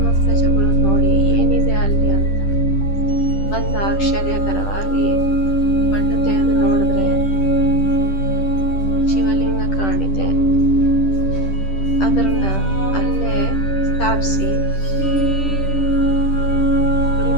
ಪ್ರಜೆಗಳು ನೋಡಿ ಏನಿದೆ ಅಲ್ಲಿ ಅಂತ ಒಂದು ಆಶ್ಚರ್ಯಕರವಾಗಿ ಮಣ್ಣು ತೆಗೆದು ನೋಡಿದ್ರೆ ಶಿವಲಿಂಗ ಕಾಣಿದೆ. ಅದನ್ನ ಅಲ್ಲೇ ಸ್ಥಾಪಿಸಿ ಗುಡಿ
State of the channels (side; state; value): right; late; 10 ms